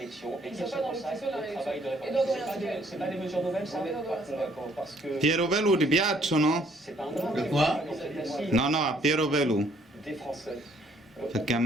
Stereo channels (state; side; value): normal; both; correlation 0.64